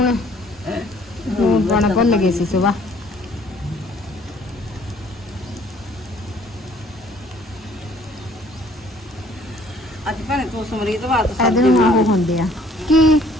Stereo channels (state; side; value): normal; both; correlation 0.58